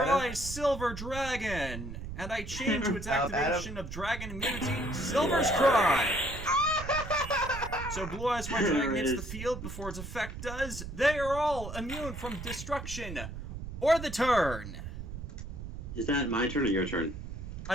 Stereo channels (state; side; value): noise; right; rumble, 8 dB below the sound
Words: Eyes Silver Dragon, and I change to its activation of Dragon Immunity Silver's Cry. So Blue Eyes White Dragon hits the field before its effect does. They are all immune from destruction or the turn. Is that my turn or your turn?